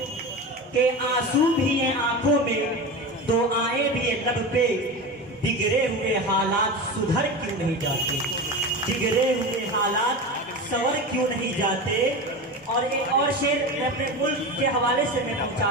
के आंसू भी है आंखों में, दो आए भी है लब पे, बिगड़े हुए हालात सुधर क्यों नहीं जाते। बिगड़े हुए हालात सवर क्यों नहीं जाते। और एक और शेर मैं अपने मुल्क के हवाले से मैं पहुंचा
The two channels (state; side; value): normal; both; correlation 0.26